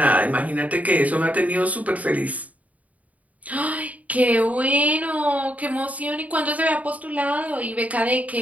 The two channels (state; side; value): late; left; 0.072 ms